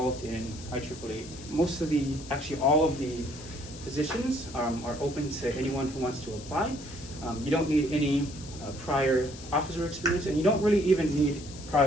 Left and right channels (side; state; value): left; noise; hiss, 16 dB below the sound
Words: in IEEE. Actually all of the positions are open to anyone who wants to apply. You don't need any prior officer experience, and you don't really even need